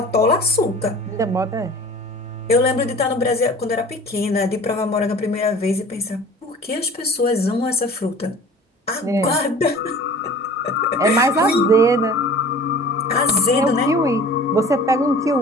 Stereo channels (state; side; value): normal; both; correlation 0.43